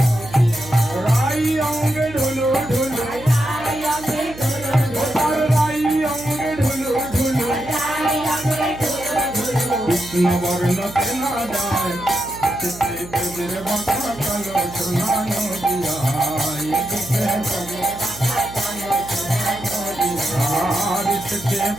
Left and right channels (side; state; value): right; noise; hum, 15 dB below the sound